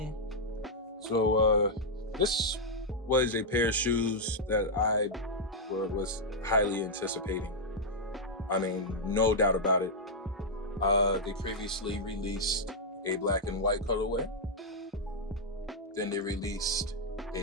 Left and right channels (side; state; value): both; normal; correlation -0.05